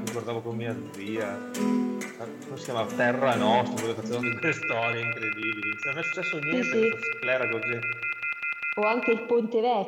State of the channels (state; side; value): identical; both; correlation 1.00